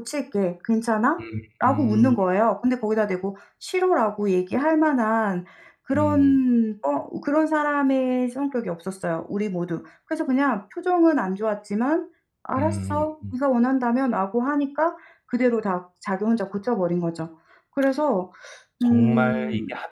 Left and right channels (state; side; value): identical; both; correlation 1.00